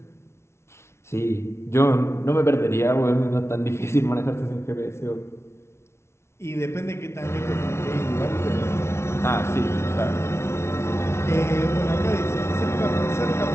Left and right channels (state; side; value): late; right; 0.13 ms